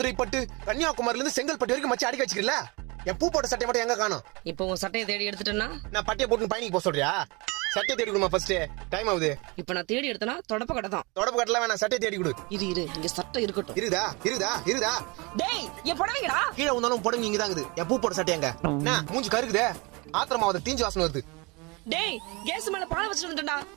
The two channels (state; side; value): quieter; left; 27.2 dB